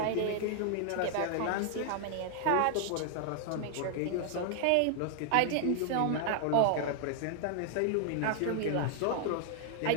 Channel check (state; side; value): different; both; correlation -0.01